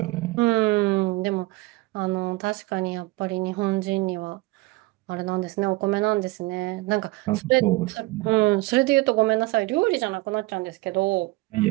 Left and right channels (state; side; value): quieter; left; 21.5 dB